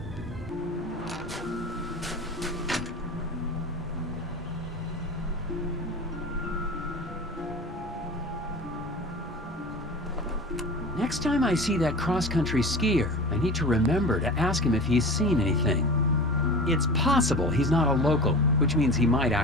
Next time I see that cross-country skier, I need to remember to ask him if he's seen anything. It's possible he's not a local, which means he might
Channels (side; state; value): both; normal; correlation 0.34